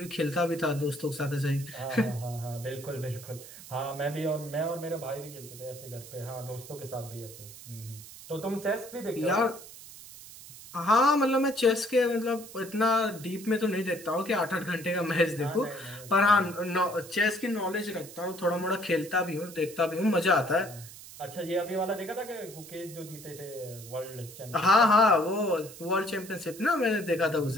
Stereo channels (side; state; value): right; noise; hiss, 16 dB below the sound